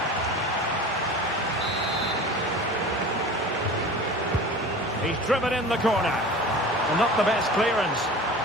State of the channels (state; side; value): normal; both; correlation 0.37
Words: He's driven in the corner. And not the best clearance.